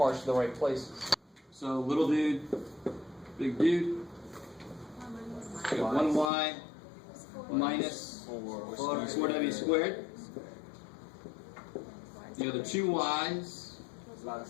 to the right places. So little dude, big dude. We got 1y minus 4w squared. The other 2 y's.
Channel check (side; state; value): right; drops out; at 6.3 s